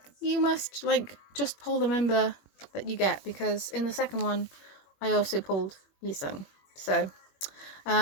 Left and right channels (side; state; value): right; late; 21 ms